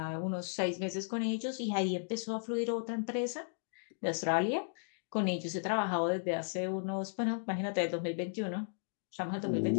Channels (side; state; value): right; silent; digital silence